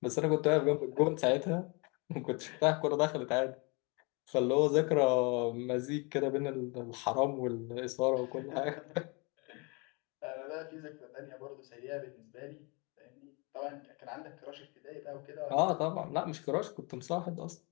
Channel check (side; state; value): right; quieter; 30.2 dB